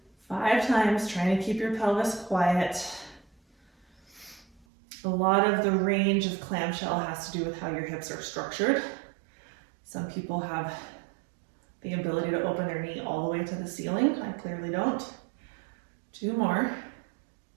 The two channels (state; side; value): drops out; left; at 4.7 s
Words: 5 times, trying to keep your pelvis quiet. A lot of the range of clamshell has to do with how your hips are structured. Some people have the ability to open their knee all the way to the ceiling. I clearly don't. 2 more.